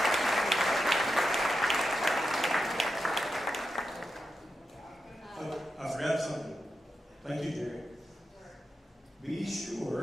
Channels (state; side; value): normal; both; correlation 0.88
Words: I forgot something. Thank you, Jerry. Be